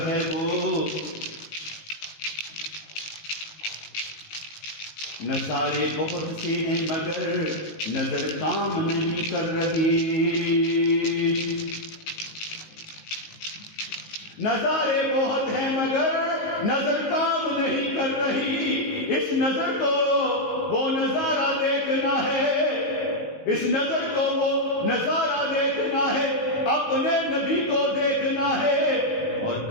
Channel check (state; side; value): late; right; 19 ms